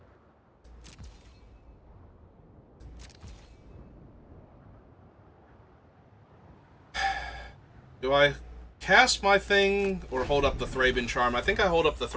Do I cast my thing or hold up the Thraben Charm? I think I hold up the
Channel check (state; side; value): identical; both; correlation 1.00